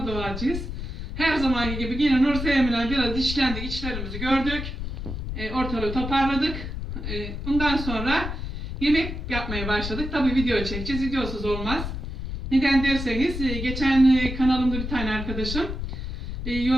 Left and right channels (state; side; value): noise; left; rumble, 5 dB below the sound